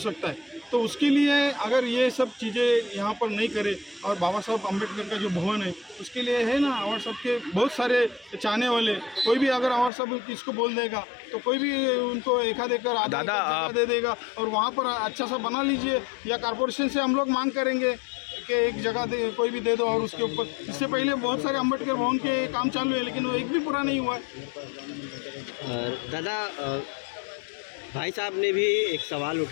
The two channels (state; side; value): drops out; right; at 9.9 s